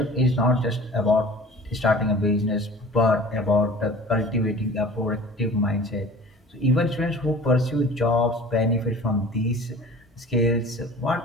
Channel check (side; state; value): both; normal; correlation 0.43